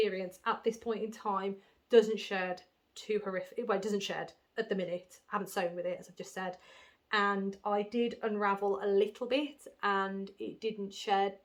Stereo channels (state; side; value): identical; both; correlation 1.00